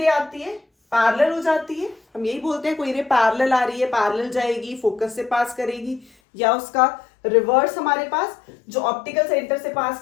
आती है पैरेलल हो जाती है। हम यही बोलते हैं कोई रे पैरेलल आ रही है, पैरेलल जाएगी, फोकस से पास करेगी, या उसका रिवर्स हमारे पास जो ऑप्टिकल सेंटर से पास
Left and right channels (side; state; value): right; drops out; at 6.1 s